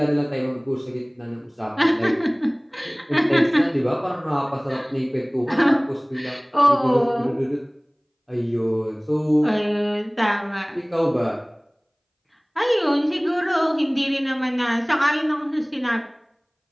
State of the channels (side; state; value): both; identical; correlation 1.00